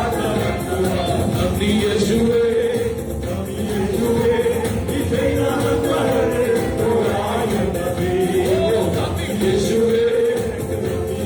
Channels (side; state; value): both; identical; correlation 1.00